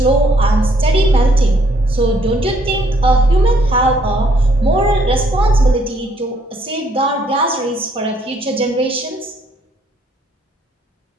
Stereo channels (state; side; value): normal; both; correlation 0.68